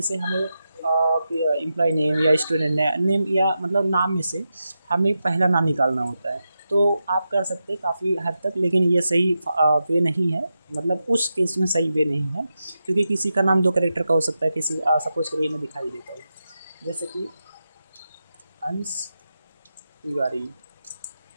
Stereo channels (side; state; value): both; inverted; correlation -0.89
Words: हमें एम्प्लॉय नेम या स्टूडेंट नेम या मतलब नाम में से हमें पहला नाम निकालना होता है। तो आप कर सकते हैं काफ़ी हद तक, लेकिन ये सही वे नहीं है, मतलब उस केस में सही वे नहीं है, क्योंकि किसी का नाम 2 कैरेक्टर का हो सकता है। किसी सपोज करिए मैं दिखाई देता हूँ, जैसे कि अंश